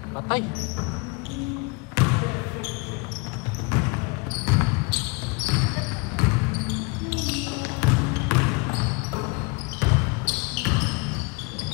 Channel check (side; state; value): right; quieter; 28.5 dB